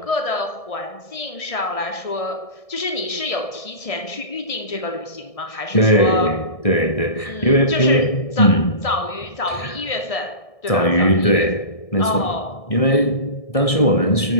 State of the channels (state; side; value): late; right; 1.6 ms